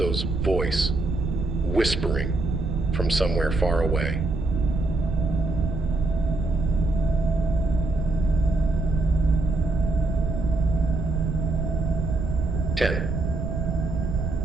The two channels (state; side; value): noise; right; rumble, 2 dB below the sound